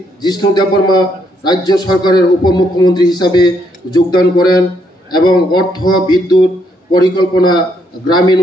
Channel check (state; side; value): normal; both; correlation 0.73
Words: জিষ্ণু দেববর্মা রাজ্য সরকারের উপমুখ্যমন্ত্রী হিসাবে যোগদান করেন এবং অর্থ, বিদ্যুৎ, পরিকল্পনা, গ্রামীণ